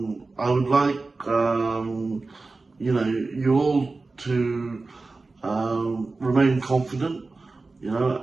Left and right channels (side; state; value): left; quieter; 3.6 dB